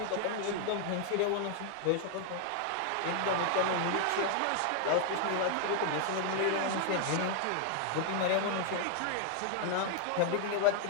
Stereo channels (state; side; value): different; both; correlation 0.00